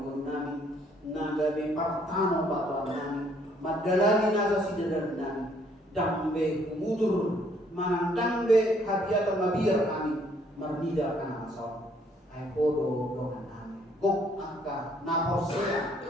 guru nami, nagawe partano batuan nami, madalani nasa sidadan nami, dambe mutur, manandangbe hadiah mabiyar kami, marnida kana masal, ay podo dokan nami, gok angka naposea.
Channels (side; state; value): both; normal; correlation 0.65